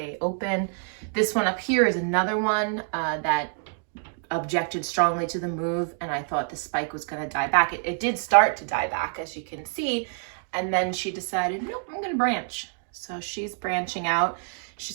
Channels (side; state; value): left; silent; 60 dB below the other